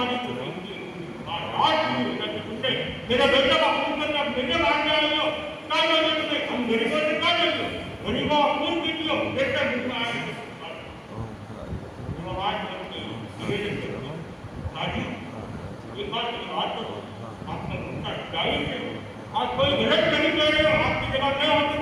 को तुमने मेरा बेटा का खून करके अब मेरे मारने आए हो, क्या चाहिए तुम्हें? हम गरीबों से क्या चाहिए? गरीबों का खून पीती हो, बेटा मुझमें आए आवाज राजू एक बात करो, आपका उनका जाहिर है आप कोई गलत नहीं कह रहे हो, आपकी जगह मैं होती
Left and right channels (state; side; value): identical; both; correlation 1.00